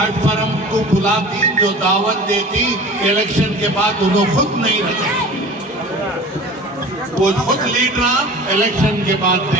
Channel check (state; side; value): normal; both; correlation 0.40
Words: को बुलाती, जो दावत देती, इलेक्शन के बाद उन्होंने खुद नहीं रहते। वो खुद लीडर इलेक्शन के बाद